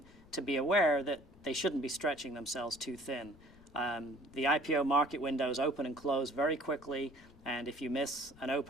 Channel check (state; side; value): noise; left; rumble, 24 dB below the sound